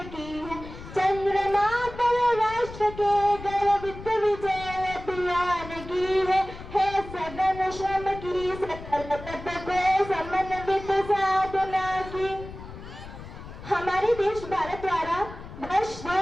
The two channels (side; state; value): left; noise; rumble, 13 dB below the sound